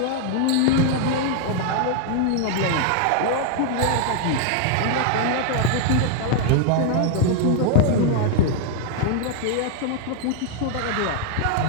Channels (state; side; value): different; both; correlation 0.00